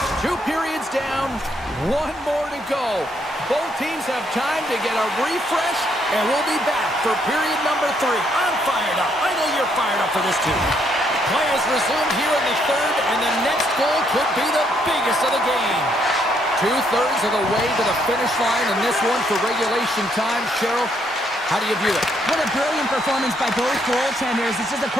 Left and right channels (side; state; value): both; normal; correlation 0.72